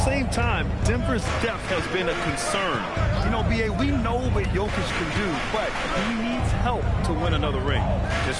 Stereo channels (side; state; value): both; identical; correlation 1.00